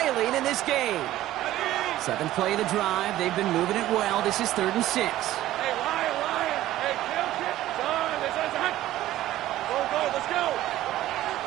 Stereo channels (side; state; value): left; quieter; 14.5 dB